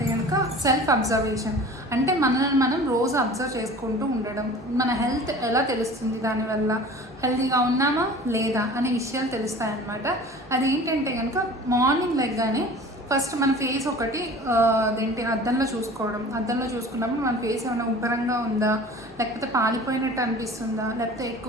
కనుక సెల్ఫ్ అబ్జర్వేషన్. అంటే మనల్ని మనం రోజు అబ్జర్వ్ చేసుకుంటూ ఉండడం. మన హెల్త్ ఎలా తెలుస్తుంది, దానివల్ల హెల్తీగా ఉన్నామా లేదా అనే విషయాలు తెలుస్తాయన్నమాట. అదేంటంటే కనుక మార్నింగ్ లెగ్గానే ఫస్ట్ మన ఫేస్ ఒకటి అద్దంలో చూసుకున్నప్పుడు మన ఫేస్ ఏమైనా ఉబ్బరంగా ఉందా, లేకపోతే పాలిపోయినట్టు అనిపిస్తుందా, లేకపోతే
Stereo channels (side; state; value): both; normal; correlation 0.42